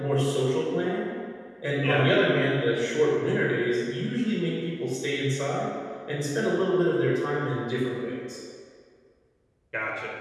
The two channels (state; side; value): identical; both; correlation 1.00